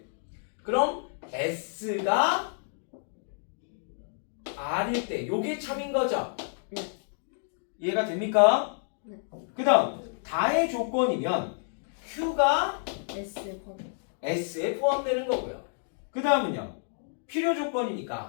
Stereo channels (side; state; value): right; silent; digital silence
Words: 그럼 S가 R일 때 요게 참인 거죠? 네. 이해가 됩니까? 네. 그 다음 다의 조건이면 Q가 S 번. S에 포함되는 거고요. 그 다음은요 필요